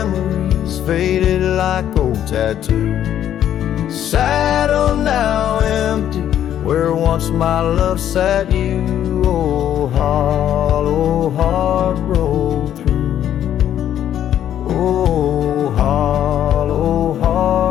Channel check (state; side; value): quieter; right; 10.7 dB